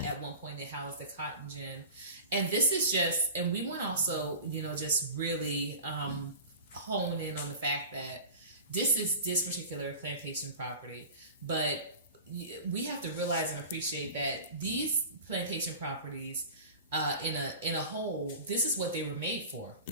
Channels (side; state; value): both; inverted; correlation -0.36